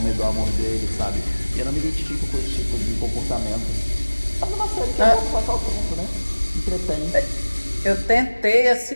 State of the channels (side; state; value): both; inverted; correlation -1.00